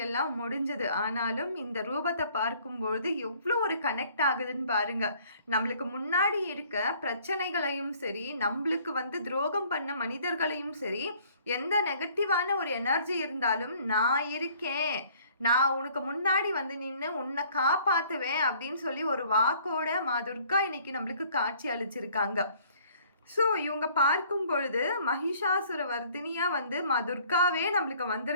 எல்லாம் முடிஞ்சது. ஆனாலும் இந்த ரூபத்தை பார்க்கும்பொழுது எவ்வளோ ஒரு கனெக்ட் ஆகுதுன்னு பாருங்க. நம்மளுக்கு முன்னாடி இருக்க பிரச்சனைகளையும் சரி, நம்மளுக்கு துரோகம் பண்ண மனிதர்களையும் சரி, எந்த நெகட்டிவான ஒரு எனர்ஜி இருந்தாலும் நான் இருக்கேன், நான் உனக்கு முன்னாடி நின்று உன்னை காப்பாற்றுவேன் அப்படின்னு சொல்லி ஒரு வாக்கோட மா துர்கா இன்னைக்கு நம்மளுக்கு காட்சி அளிச்சிருக்காங்க. ஸோ இவங்க பார்க்கும் பொழுது மகிஷாசுர வர்தினியாக மா துர்காவே நம்மளுக்கு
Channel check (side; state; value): both; inverted; correlation -0.57